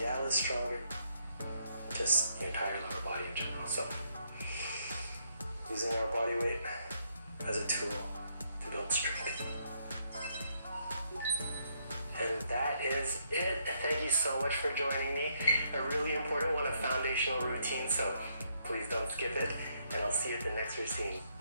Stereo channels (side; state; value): both; inverted; correlation -0.73